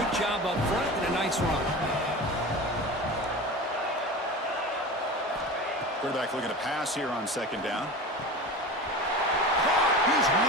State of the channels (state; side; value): normal; both; correlation 0.31